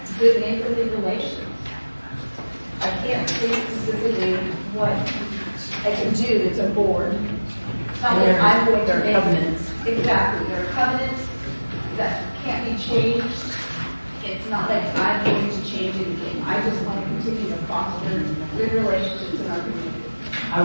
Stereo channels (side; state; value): both; inverted; correlation -1.00